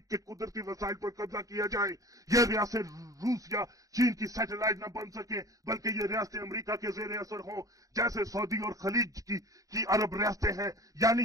के कुदरती वसाइल पर कब्जा किया जाए। यह रियासत रूस या चीन की सैटेलाइट न बन सके, बल्कि ये रियासतें अमेरिका के जेर असर हों, जैसे सऊदी और खलीज की अरब रियासतें हैं,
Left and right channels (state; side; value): late; left; 0.16 ms